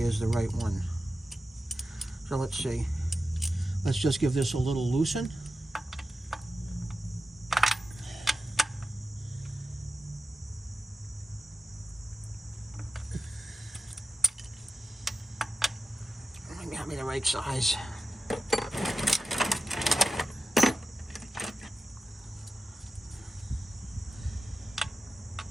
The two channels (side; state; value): both; normal; correlation 0.92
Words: the right one. So let's see. Let's just give this a little loosen. Maybe have me the right size.